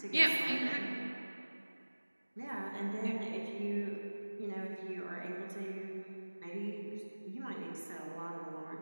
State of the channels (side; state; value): both; inverted; correlation -1.00